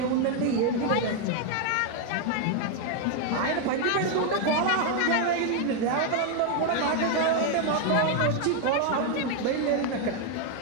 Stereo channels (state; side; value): different; both; correlation 0.01